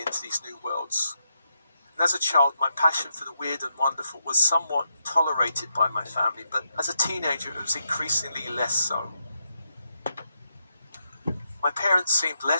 these new worlds. And as a child, my passion for the weird and wonderful was somewhat tolerated by my family, but as a teenager, it was increasingly less so. My parents seemed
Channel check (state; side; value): inverted; both; correlation -0.82